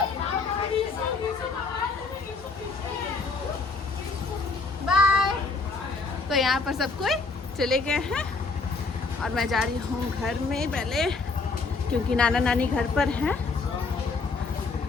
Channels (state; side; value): quieter; right; 4.1 dB